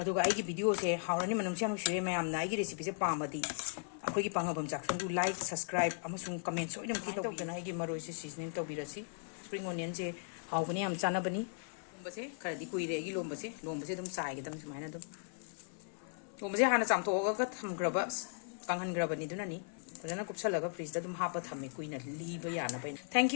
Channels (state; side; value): silent; right; 53 dB below the other